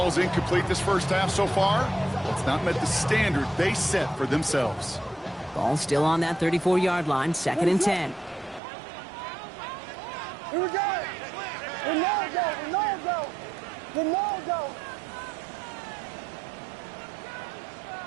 incomplete this first half so far, it's not met the standard they set for themselves. Ball still on that 34-yard line, 2nd and 10. Here we go. Ronaldo.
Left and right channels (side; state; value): left; drops out; at 8.6 s